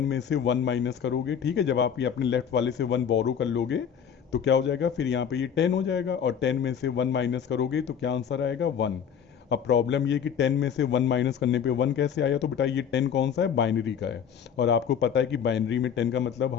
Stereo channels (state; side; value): quieter; right; 8.0 dB